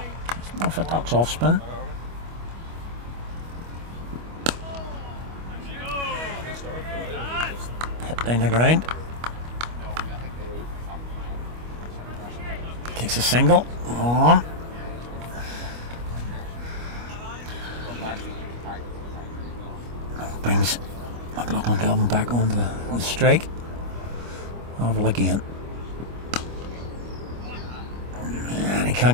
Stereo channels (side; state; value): left; late; 25 ms